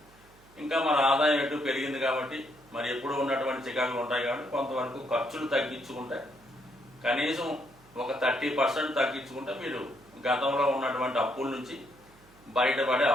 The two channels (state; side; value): noise; right; hum, 27 dB below the sound